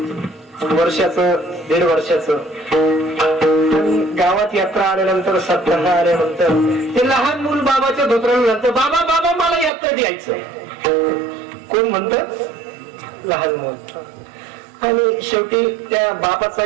वर्षाचं, 1.5 वर्षाचं, गावात यात्रा आल्यानंतर, सप्ताह आल्यानंतर ते लहान मूल बाबाच्या धोत्राला म्हणतं, बाबा बाबा मला यात्रेत यायचंय. कोण म्हणत? लहान मूल. आणि शेवटी त्या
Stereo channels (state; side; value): drops out; left; at 9.7 s